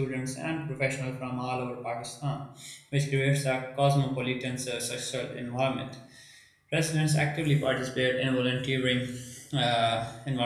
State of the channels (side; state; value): both; identical; correlation 1.00